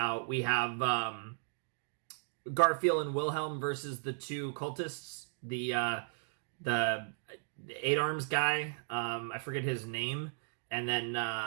We have Garfield and Wilhelm versus the two cultists. The Eight Arms guy, I forget his name, and then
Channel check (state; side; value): silent; left; digital silence